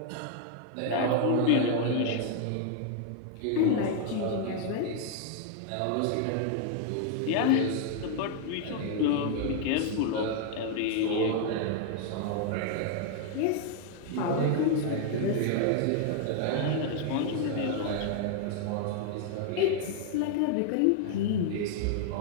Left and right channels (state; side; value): different; both; correlation 0.00